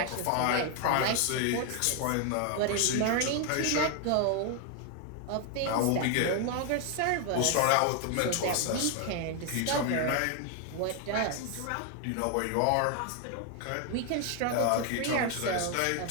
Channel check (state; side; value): different; both; correlation 0.01